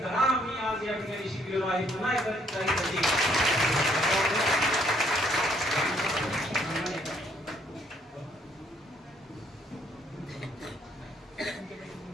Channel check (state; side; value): normal; both; correlation 0.67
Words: धडा आम्ही आज या ठिकाणी शिकलेलो आहे. पुन्हा